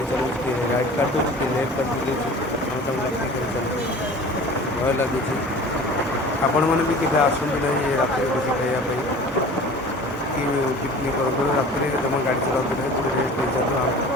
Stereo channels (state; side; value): normal; both; correlation 0.42